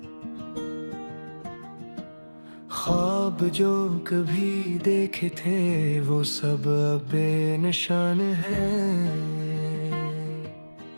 ख्वाब जो कभी देखे थे वो सब अब बेनिशान है।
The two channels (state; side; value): inverted; both; correlation -1.00